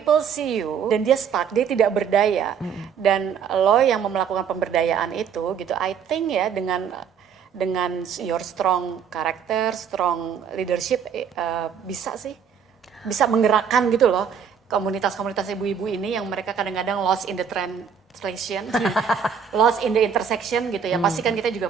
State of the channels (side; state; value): left; quieter; 7.3 dB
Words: see you dan dia stuck, dia tidak berdaya, dan lo yang melakukan pemberdayaan itu gitu, I think ya dengan your strong character, strong leadership, bisa menggerakkan gitu loh komunitas-komunitas ibu-ibu ini yang mereka kadang-kadang lost in the translation, lost in the intersection gitu ya. Pasti kan kita juga